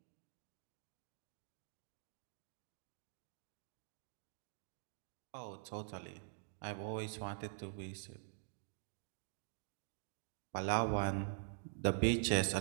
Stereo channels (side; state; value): left; silent; digital silence